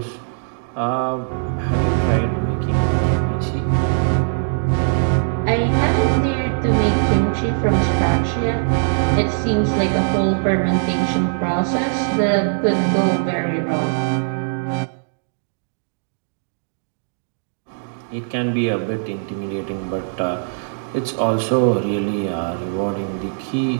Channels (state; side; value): silent; left; digital silence